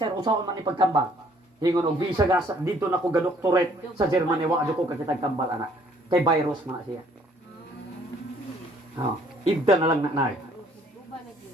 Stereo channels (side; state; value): both; normal; correlation 0.61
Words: usaon man ni pagkambal. Ingon og visa gas dito na ko ga doctorate sa Germany wa adto ko kakitag kambal anak. Kay virus man siya. Oh, ibda na lang na nay.